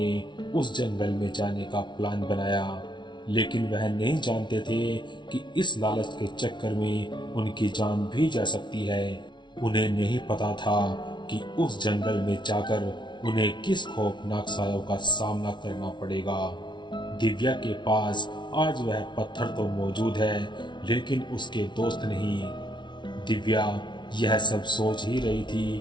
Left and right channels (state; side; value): late; right; 0.23 ms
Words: उस जंगल में जाने का प्लान बनाया, लेकिन वह नहीं जानते थे कि इस लालच के चक्कर में उनकी जान भी जा सकती है। उन्हें नहीं पता था कि उस जंगल में जाकर उन्हें किस खौफनाक सायों का सामना करना पड़ेगा। दिव्या के पास आज वह पत्थर तो मौजूद है, लेकिन उसके दोस्त नहीं। दिव्या यह सब सोच ही रही